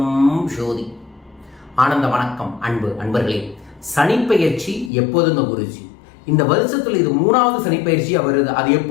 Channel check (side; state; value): right; drops out; at 4.9 s